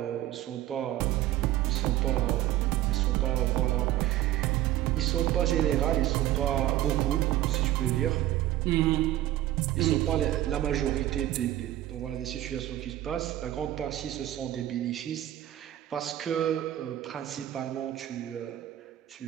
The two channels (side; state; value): left; quieter; 14.0 dB